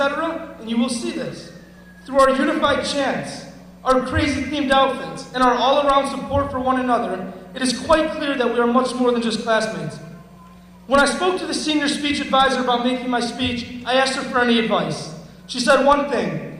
and you will see this. Through our unified chants, our crazy themed outfits, and our all-around support for one another, it is quite clear that we are much more than just classmates. When I spoke to the senior speech advisor about making my speech, I asked her for any advice. She said one thing.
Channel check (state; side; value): identical; both; correlation 1.00